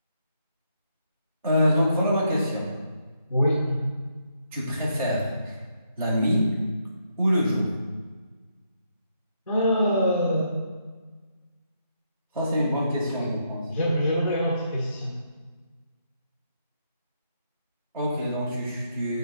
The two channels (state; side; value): inverted; both; correlation -0.78